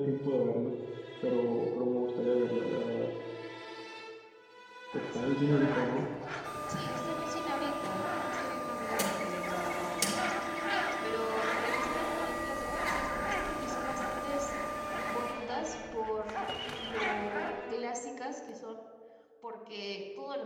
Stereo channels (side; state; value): both; identical; correlation 1.00